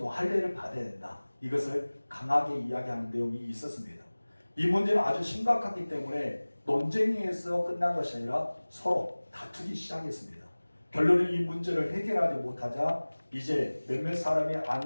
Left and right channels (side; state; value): both; inverted; correlation -1.00